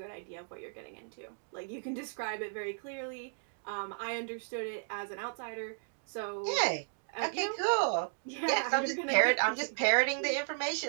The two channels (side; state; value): left; silent; digital silence